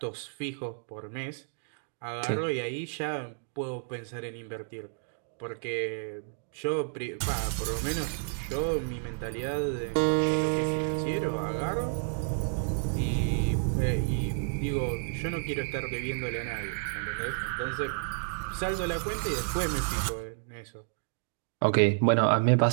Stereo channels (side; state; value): left; silent; digital silence